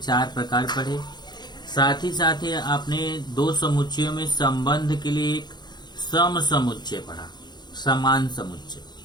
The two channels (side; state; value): right; late; 0.21 ms